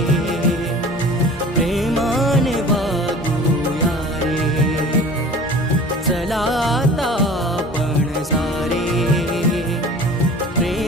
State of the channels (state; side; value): normal; both; correlation 0.43